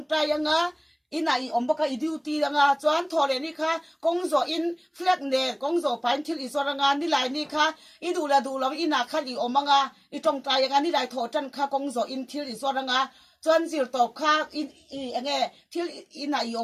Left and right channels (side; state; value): both; identical; correlation 1.00